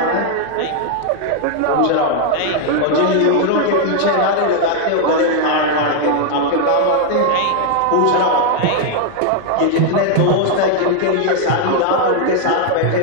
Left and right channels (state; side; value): different; both; correlation 0.00